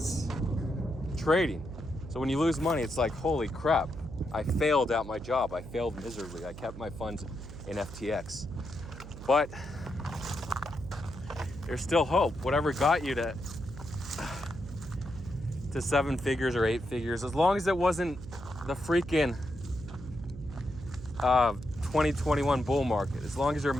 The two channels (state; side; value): noise; right; hum, 13 dB below the sound